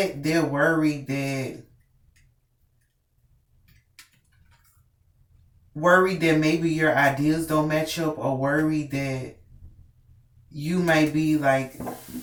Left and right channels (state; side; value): identical; both; correlation 1.00